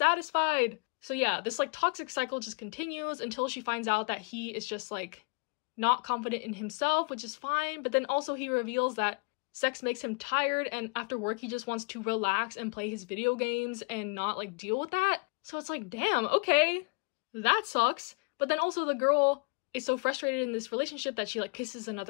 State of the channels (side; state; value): right; quieter; 33.7 dB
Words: So yeah, this, like, toxic cycle just continues until she finds out that he is just, like, not confident in himself, which is fine. But then also he reveals that sex makes him tired, and after work he just wants to relax and play his video games and not, like, deal with that. So it's like, damn, okay, that sucks. But then also the girl is so frustrated in this relationship that she like kisses